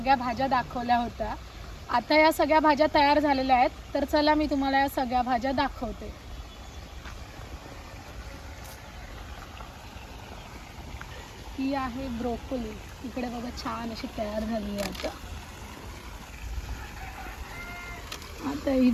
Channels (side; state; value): both; identical; correlation 1.00